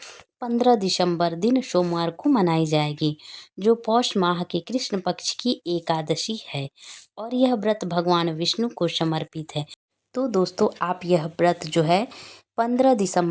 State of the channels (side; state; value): both; identical; correlation 1.00